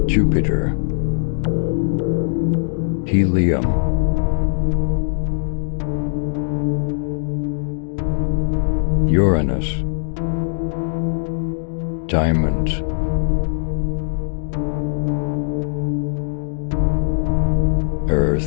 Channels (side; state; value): right; silent; 66 dB below the other